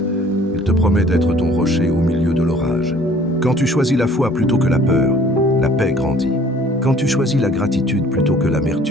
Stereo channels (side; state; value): both; normal; correlation 0.54